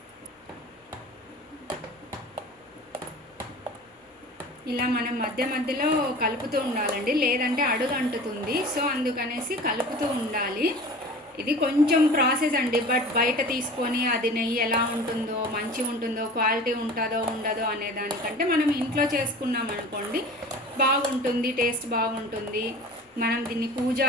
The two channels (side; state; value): both; normal; correlation 0.40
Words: ఇలా మనం మధ్య మధ్యలో కలుపుతూ ఉండాలండి, లేదంటే అడుగు అంటుతుంది. సో అందుకనేసి కలుపుతూ ఉండాలి. ఇది కొంచెం ప్రాసెస్ అండి, బట్ బయట తీసుకొని అది నెయ్యి ఎలా ఉంటుందో, మంచిగా ఉంటుందో, క్వాలిటీ ఉంటుందో ఉండదో అనే దానికంటే మనం ఇంట్లో చేసుకున్నాం అనుకోండి బాగుంటుంది, టేస్ట్ బాగుంటుంది. మనం దీన్ని